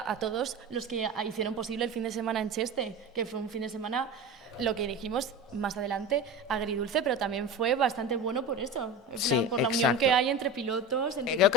a todos los que hicieron posible el fin de semana en Cheste, que fue un fin de semana, lo que dijimos más adelante, agridulce, pero también fue bastante bueno por eso, por la unión que hay entre pilotos, entre creo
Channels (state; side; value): normal; both; correlation 0.29